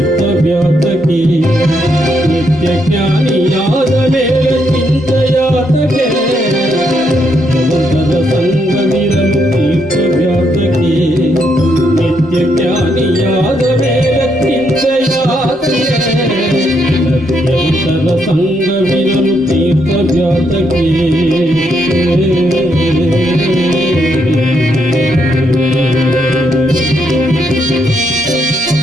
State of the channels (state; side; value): normal; both; correlation 0.77